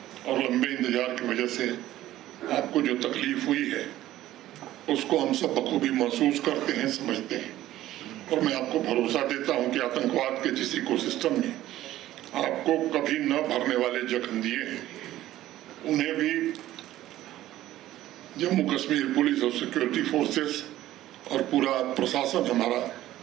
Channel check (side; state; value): left; quieter; 14.3 dB